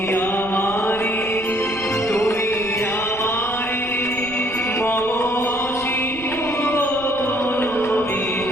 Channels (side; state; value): right; noise; rumble, 18 dB below the sound